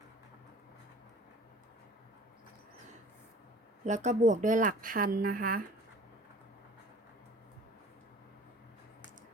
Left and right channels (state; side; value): normal; both; correlation 0.47